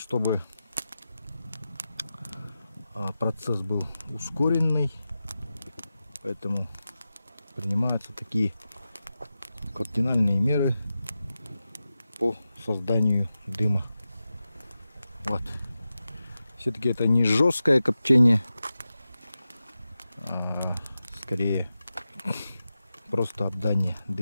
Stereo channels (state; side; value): inverted; both; correlation -0.92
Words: процесс был ускоренный. Поэтому принимаются такие кардинальные меры по созданию дыма. Вот. Все-таки это не жесткое копчение, а скорее просто обдание